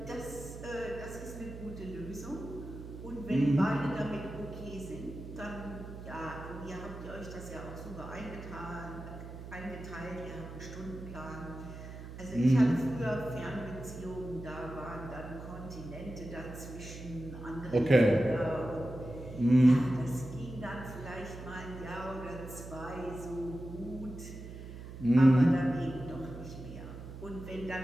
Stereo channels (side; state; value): right; noise; hum, 11 dB below the sound